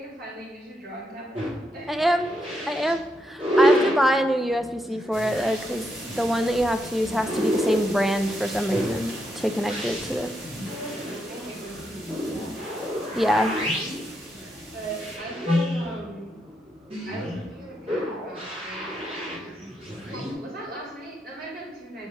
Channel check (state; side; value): normal; both; correlation 0.80